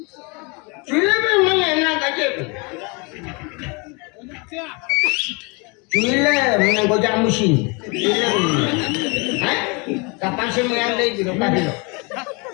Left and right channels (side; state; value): right; quieter; 30.2 dB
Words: চুইলে বে মানে না কাজে বে চুইলে মানে গোজা মুশিন চুইলে হ্যাঁ কাপান সে মেয়ান দেই দিল কাদিল